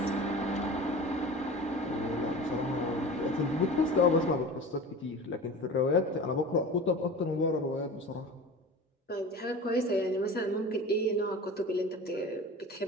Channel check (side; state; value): both; normal; correlation 0.36